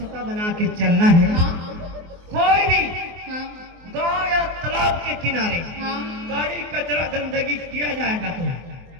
बना के चलना है हाँ कोई भी हाँ गांव या तालाब के किनारे हाँ गाड़ी कचरा गंदगी किया जाएगा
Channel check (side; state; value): left; late; 24 ms